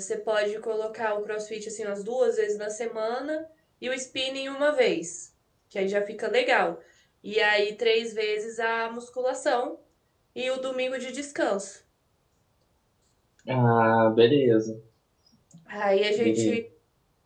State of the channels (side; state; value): both; identical; correlation 1.00